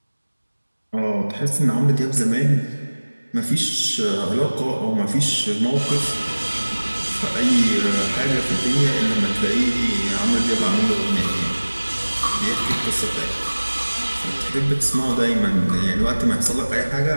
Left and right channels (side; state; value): both; inverted; correlation -1.00